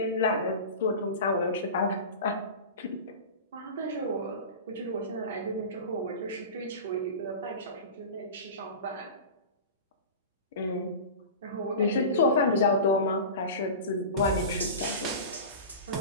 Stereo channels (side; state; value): both; inverted; correlation -0.31